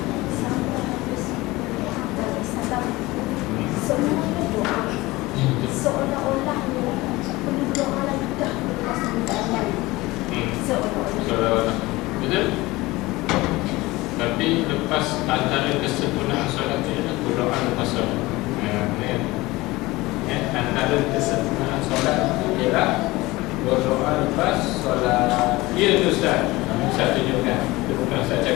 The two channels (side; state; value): right; quieter; 20.4 dB